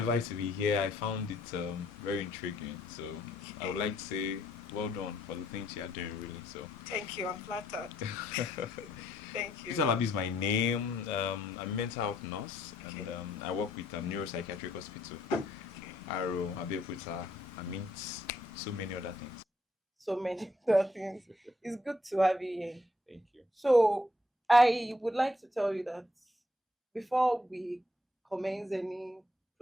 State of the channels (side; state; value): both; normal; correlation 0.70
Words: to be here, I found it very intriguing. So I would like to say well done for the things you are doing, really. So Thank you. I'm flattered. Thank you. Isalabi is my name. I'm a mental health nurse, and Okay. I work with a neuropsychiatric hospital. Okay. Aro, Abeokuta, I mean, so many other things. So many other things. It's good to have you here. Thank you. So I would like to tell you that before we commence any